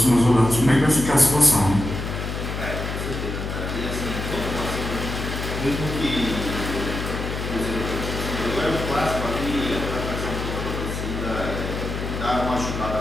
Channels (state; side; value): noise; left; hum, 4 dB below the sound